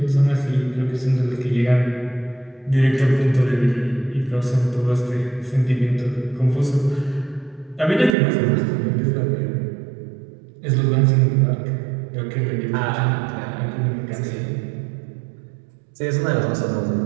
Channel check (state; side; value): drops out; left; at 8.1 s